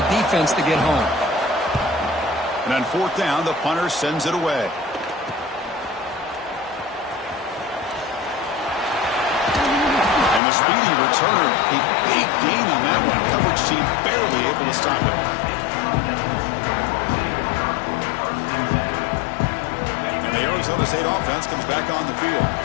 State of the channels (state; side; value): drops out; right; at 10.4 s